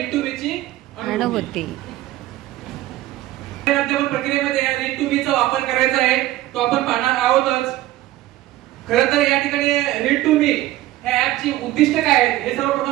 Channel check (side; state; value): left; quieter; 15.7 dB